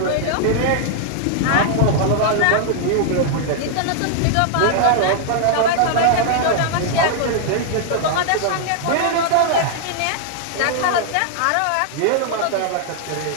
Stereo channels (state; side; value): different; both; correlation -0.01